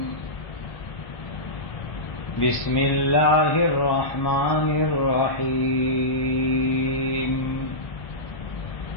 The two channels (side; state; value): right; late; 1.1 ms